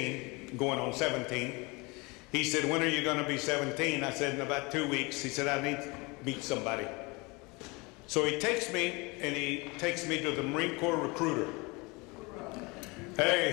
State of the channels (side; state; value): right; quieter; 26.4 dB